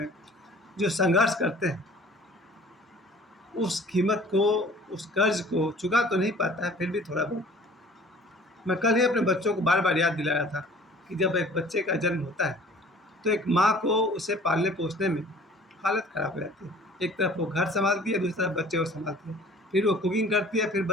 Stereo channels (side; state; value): both; normal; correlation 0.50